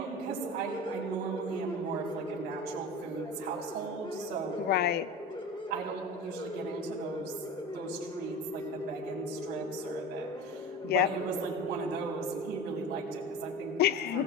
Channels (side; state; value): both; normal; correlation 0.32